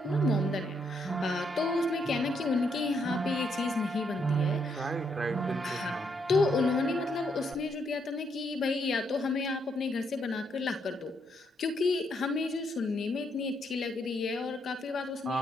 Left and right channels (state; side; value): normal; both; correlation 0.76